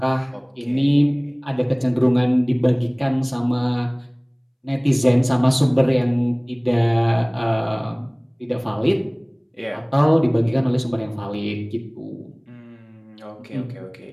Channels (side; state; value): both; identical; correlation 1.00